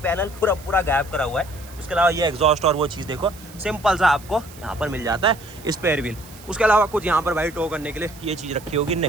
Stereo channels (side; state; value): right; noise; hiss, 21 dB below the sound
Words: पैनल पूरा गायब करा हुआ है। उसके अलावा ये एग्जॉस्ट और वो चीज़ देखो सिंपल सा आपको यहाँ पर मिल जाता है स्पेयर व्हील। उसके अलावा कुछ यहाँ पर भाई टो करने के लिए ये चीज़ रखी होगी